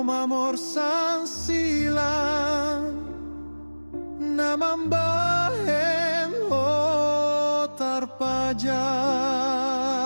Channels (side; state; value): both; inverted; correlation -1.00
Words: sang silang namambahem ho tarpajal